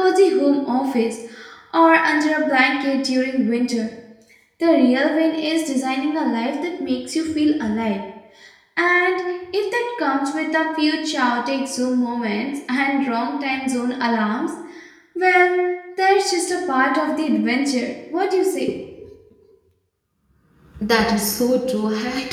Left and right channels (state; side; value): identical; both; correlation 1.00